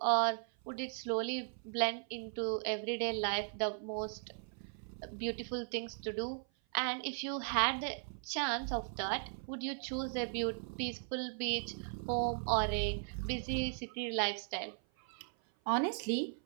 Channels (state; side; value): silent; left; 53 dB below the other